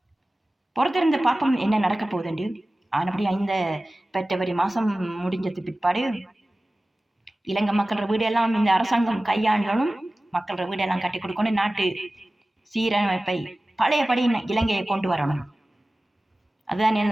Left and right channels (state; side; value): normal; both; correlation 0.97